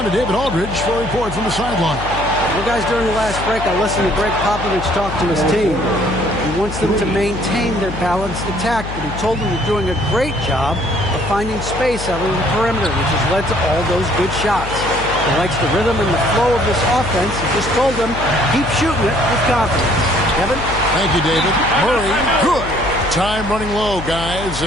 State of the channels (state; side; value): noise; left; hum, 9 dB below the sound